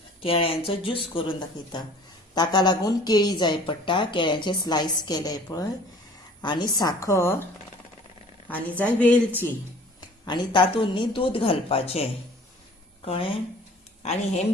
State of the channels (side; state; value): both; normal; correlation 0.50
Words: केळ्यांचो ज्यूस करून दाखयता। ताका लागून केळी जाय पडटा, केळ्यांचे स्लायस केले पळय आनी साखर आनी जाय वेलची आनी तातूंत न्ही दूद घालपाचें, कळ्ळें। आनी हें